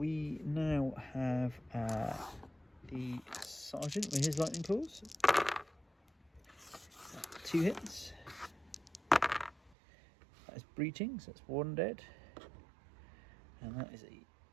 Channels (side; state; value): left; drops out; at 9.8 s